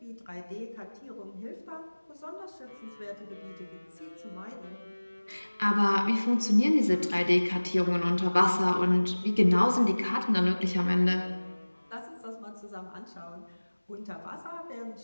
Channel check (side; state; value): both; inverted; correlation -1.00